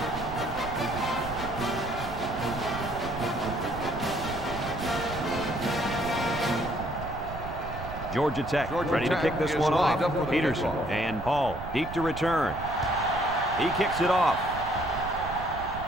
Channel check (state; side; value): noise; right; rumble, 10 dB below the sound